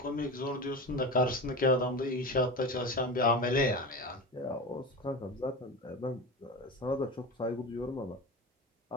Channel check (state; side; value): normal; both; correlation 0.26